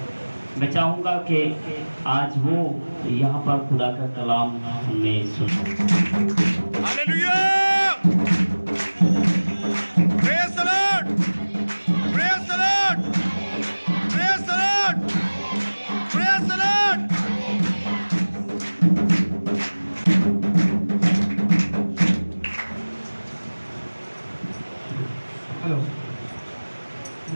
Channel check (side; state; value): both; inverted; correlation -1.00